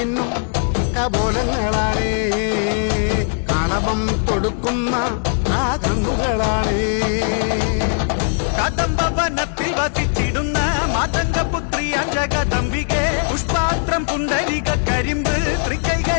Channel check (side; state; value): right; silent; digital silence